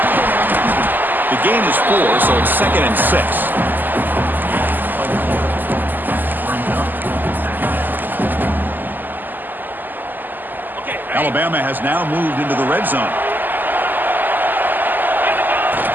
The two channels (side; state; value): left; late; 0.088 ms